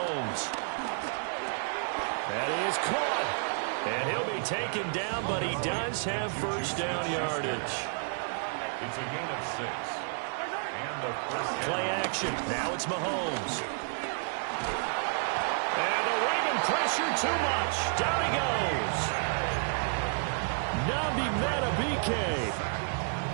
And he is caught. And he'll be taken down, but he does have first down yardage. It's a gain of 6. And the first Play action. Now it's Mahomes. And the Raven pressure too much. Down he goes. Nabi Matabike.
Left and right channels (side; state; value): left; silent; 57 dB below the other